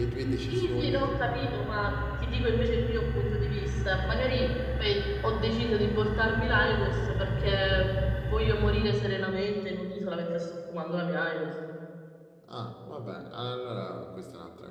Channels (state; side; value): identical; both; correlation 1.00